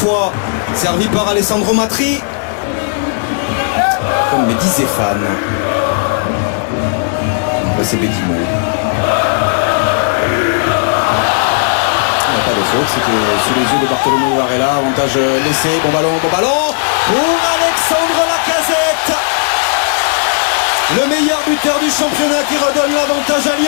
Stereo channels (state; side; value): silent; right; digital silence